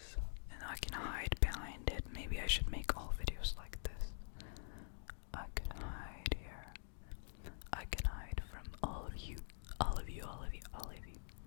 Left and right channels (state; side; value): silent; right; digital silence